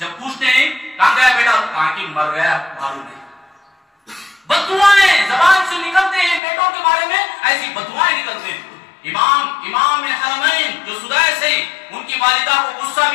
پوچھتے ہیں کہاں گیا بیٹا، کہاں کی مر گیا معلوم نہیں، بددعائیں زبان سے نکلتے ہیں بیٹوں کے بارے میں، ایسی بددعائیں نکلتے ہیں۔ امام حرمین جو سدیس ہیں، ان کی والدہ کو غصہ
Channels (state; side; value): drops out; right; at 6.4 s